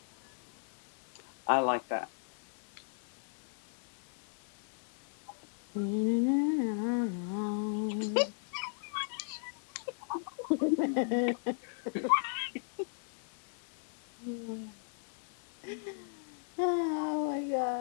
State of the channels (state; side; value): silent; right; 53 dB below the other